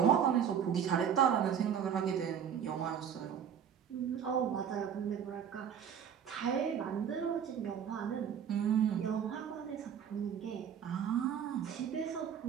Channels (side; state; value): left; quieter; 8.3 dB